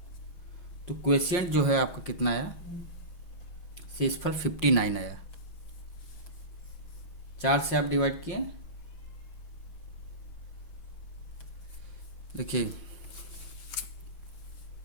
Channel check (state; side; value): late; right; 5.6 ms